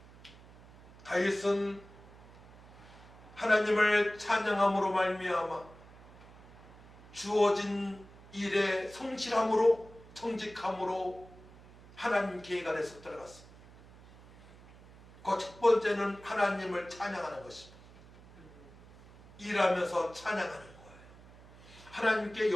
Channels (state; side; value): noise; right; hum, 21 dB below the sound